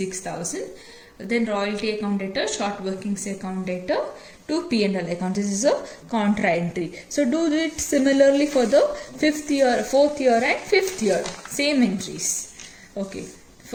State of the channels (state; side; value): identical; both; correlation 1.00